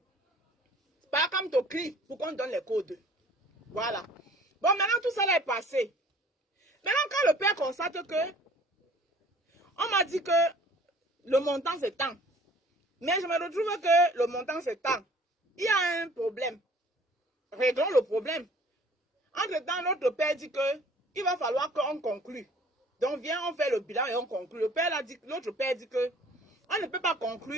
Par comme tu cries pour qu'on donne les codes. Voilà. Bon, maintenant tout ça là est passé. Maintenant quand le père constate que... On m'a dit que le montant c'est tant. Mais je me retrouve que le montant c'est tant. Il y a un problème. Réglons le problème. Entre-temps, notre père dit que il va falloir qu'on conclue. Donc, viens, on fait le bilan et on conclut. L'autre père dit que on ne peut pas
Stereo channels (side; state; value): both; normal; correlation 0.51